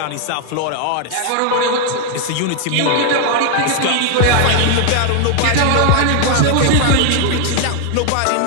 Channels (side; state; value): both; different; correlation 0.00